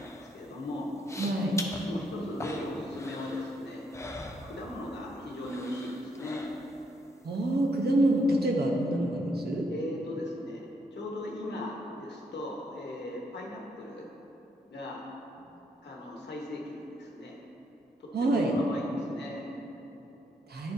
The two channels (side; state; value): both; normal; correlation 0.74